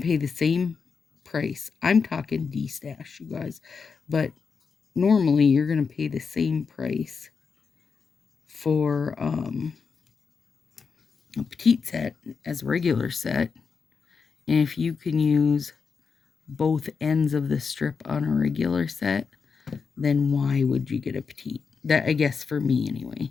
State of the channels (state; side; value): quieter; right; 5.5 dB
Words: pay the same price. I'm talking D-stash, you guys. But normally, you're going to pay the same price for a petite set as a regular set. And if you can use both ends of the strip on a regular set, then why would you get a petite? That, I guess, for me anyway.